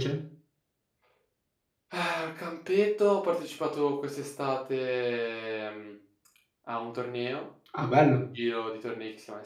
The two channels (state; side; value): identical; both; correlation 1.00